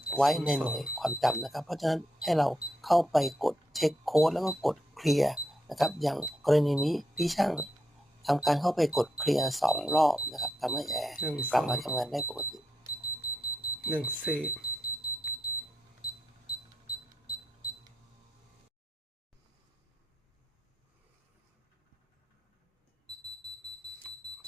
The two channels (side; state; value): both; normal; correlation 0.81